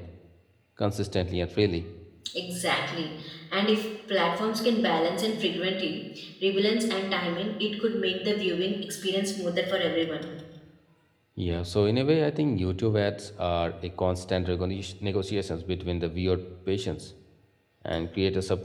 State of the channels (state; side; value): identical; both; correlation 1.00